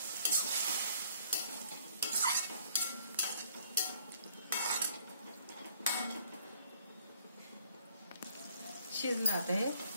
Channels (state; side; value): inverted; both; correlation -0.62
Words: शिजलं आता हे